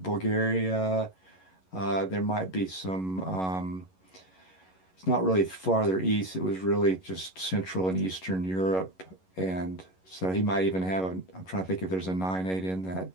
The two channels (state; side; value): late; right; 11 ms